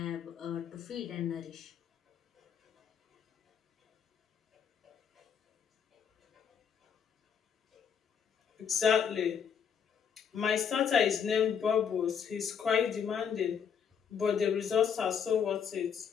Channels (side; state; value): right; quieter; 7.4 dB